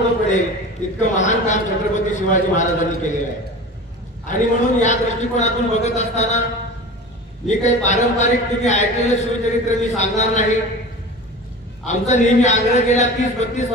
पडेल इतकं महान काम छत्रपती शिवाजी महाराजांनी केलेलं आहे। आणि म्हणून या दृष्टिकोनातून बघत असताना मी काही पारंपरिक तुम्ही ऐकलेलं शिवचरित्र मी सांगणार नाही। आमचा नेहमी आग्रह गेल्या 30-32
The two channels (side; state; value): both; normal; correlation 0.34